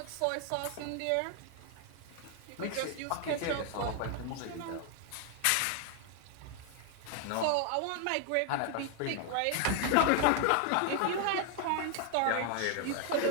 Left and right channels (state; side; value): different; both; correlation 0.00